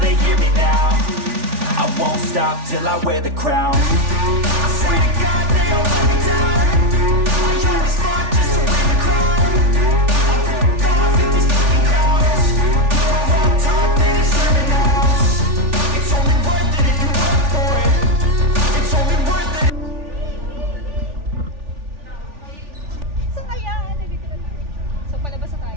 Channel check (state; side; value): late; left; 3.4 ms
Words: they hear me now. I won't stop till I wear the crown. I swear to God they all let me down. I always fought just to wear the crown.